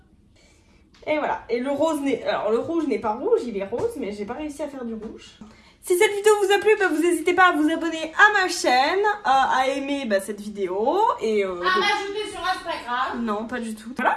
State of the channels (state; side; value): identical; both; correlation 1.00